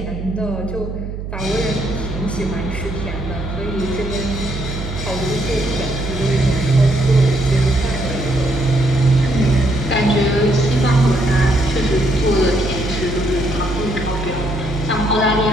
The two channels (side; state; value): right; noise; hum, 7 dB below the sound